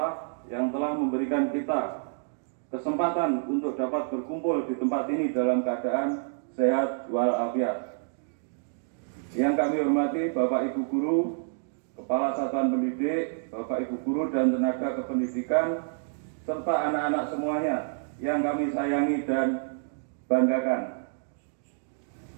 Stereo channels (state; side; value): silent; left; digital silence